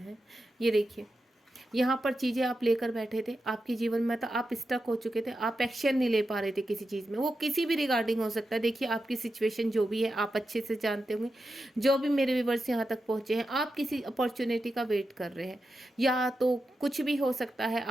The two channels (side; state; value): both; normal; correlation 0.89